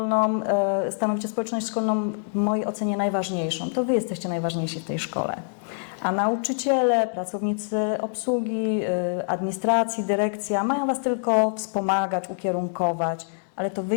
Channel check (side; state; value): right; silent; digital silence